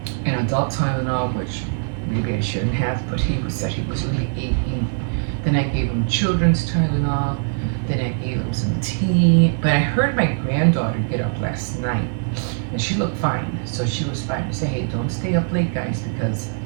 an adult Tylenol, which maybe I shouldn't have, but he said he was really aching. Then I gave him children's Tylenol. Then I gave him some tea. But I heard my granddaughter get up last night, and she looked fine. So she was fine. I said, hey, don't stay up late, guys, because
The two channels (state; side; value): silent; left; digital silence